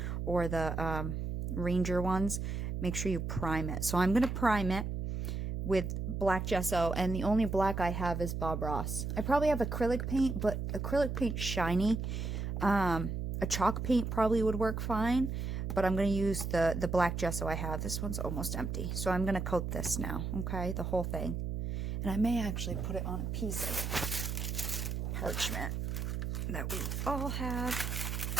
or the Ranger ones, make sure you prime it. So I'm going to prime it with black gesso, and the only black I have is Bob Ross. I probably have acrylic paint, but acrylic paint's shiny. A chalk paint probably would work fine, but I'm going to use the black gesso I have. This one's almost empty. So I'm going to coat this now, okay, the whole thing. And I may actually put it on a piece of parchment that we all have,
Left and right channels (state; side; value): noise; right; hum, 3 dB below the sound